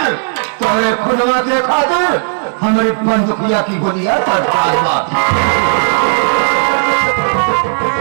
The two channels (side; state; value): left; silent; digital silence